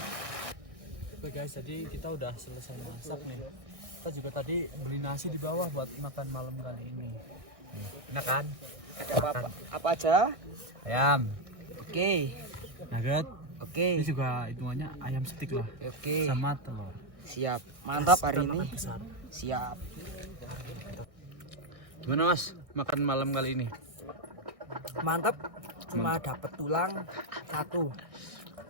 Oke guys, jadi kita udah selesai masak nih. Kita juga tadi beli nasi di bawah buat makan malam kali ini. Enak kan? Ada apa aja? Ayam, Oke. nugget. Oke. Ini juga hitungannya ayam stik lah. Oke. Sama telur. Siap. Mantap hari Kita ini. makan besar. Siap. Gimana Mas? Makan malam kali ini? Mantap. Cuma dapat tulang 1.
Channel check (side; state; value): left; late; 1.6 ms